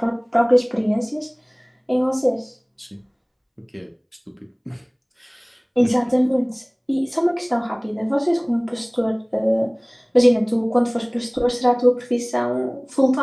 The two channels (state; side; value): identical; both; correlation 1.00